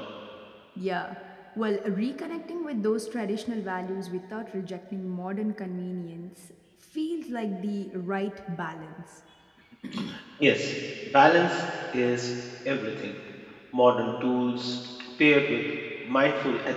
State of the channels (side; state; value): both; identical; correlation 1.00